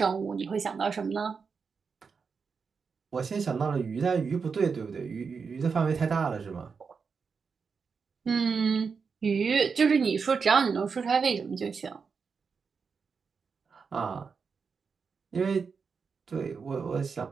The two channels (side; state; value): left; quieter; 5.5 dB